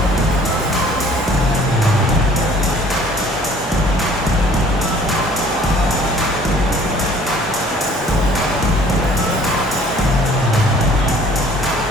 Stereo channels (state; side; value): normal; both; correlation 0.54